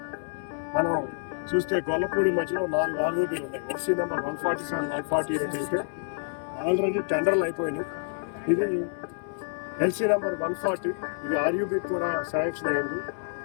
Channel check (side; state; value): right; silent; 59 dB below the other